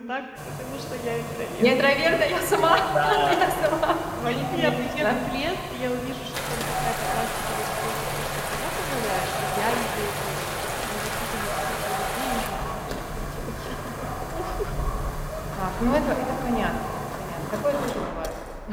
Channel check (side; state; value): both; identical; correlation 1.00